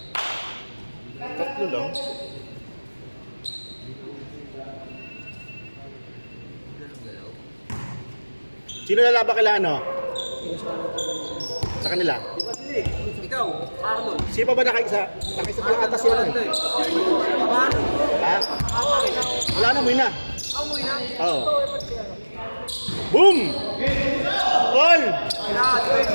Tatlo lang? Sino lalaban kila ano? Sa kanila? Ikaw, Arnold. Sino pa ba nakaisa? Nakaisa pa lang atas yun eh. Ha? Wala na, umuwi na. Oo. Boom! All!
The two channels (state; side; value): inverted; both; correlation -1.00